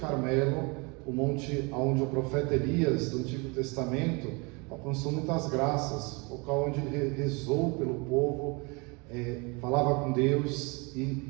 o monte onde o profeta Elias, do Antigo Testamento, alcançou muitas graças, o local onde ele rezou pelo povo, falava com Deus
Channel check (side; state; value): left; quieter; 29.2 dB